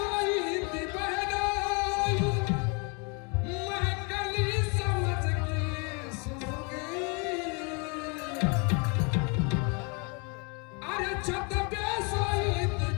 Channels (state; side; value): quieter; right; 33.3 dB